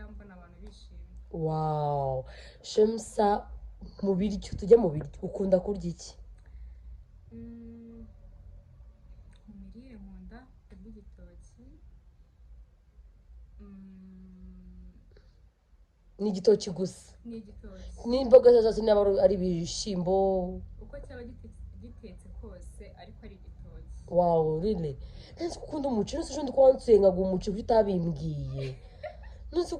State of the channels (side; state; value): both; identical; correlation 1.00